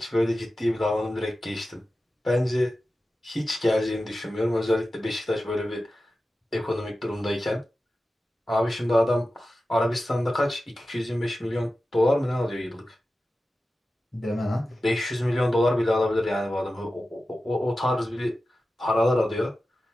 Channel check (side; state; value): both; normal; correlation 0.94